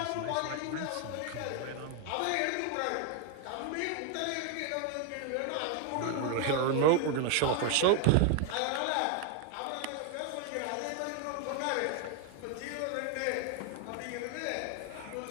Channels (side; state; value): both; different; correlation 0.01